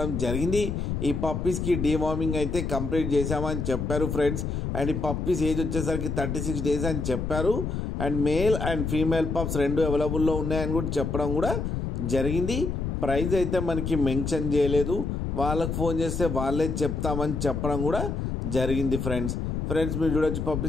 జరిగింది. ఈ పప్పీస్కి డీవార్మింగ్ అయితే కంప్లీట్ చేశామని చెప్పారు ఫ్రెండ్స్. అండ్ ఈ పప్పీస్ ఏజ్ వచ్చేసరికి 36 డేస్ అని చెప్పారు. And male and female pups రెండు అవైలబుల్లో ఉన్నాయని కూడా చెప్పడం కూడా జరిగింది. ప్రైస్ అయితే మనకి మెన్షన్ చేయలేదు. వాళ్ళకి ఫోన్ చేస్తే వాళ్ళే చెప్తామని చెప్పడం కూడా జరిగింది ఫ్రెండ్స్. మీరు చూడొచ్చు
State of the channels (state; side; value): noise; left; rumble, 2 dB below the sound